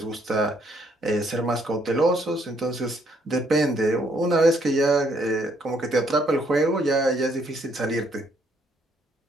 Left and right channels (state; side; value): normal; both; correlation 0.69